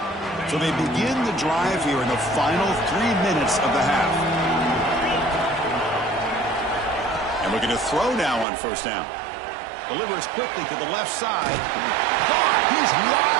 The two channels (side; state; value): left; drops out; at 8.5 s